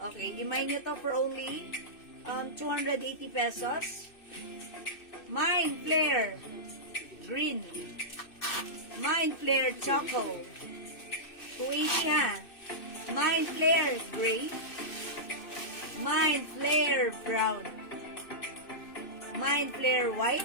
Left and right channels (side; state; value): right; late; 2.6 ms